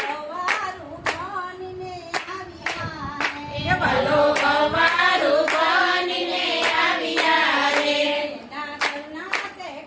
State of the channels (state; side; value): identical; both; correlation 1.00